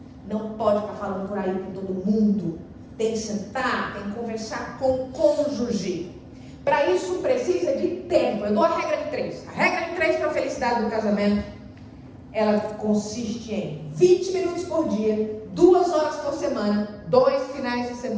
Não pode ficar falando por aí com todo mundo. Tem que sentar, tem que conversar com o cônjuge. Para isso precisa de tempo. Eu dou a regra de 3. A regra de 3 para a felicidade do casamento, ela consiste em 20 minutos por dia, 2 horas por semana, 2 finais de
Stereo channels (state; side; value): identical; both; correlation 1.00